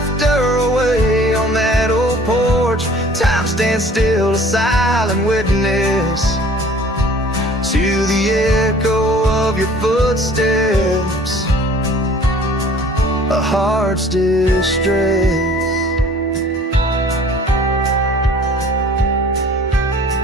away. On that old porch, time stands still, a silent witness to the echo of your footsteps, a heart's distress.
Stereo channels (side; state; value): both; normal; correlation 0.51